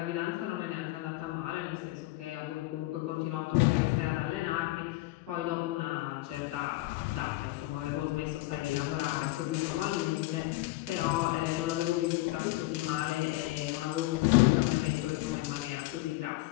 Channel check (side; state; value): right; quieter; 19.2 dB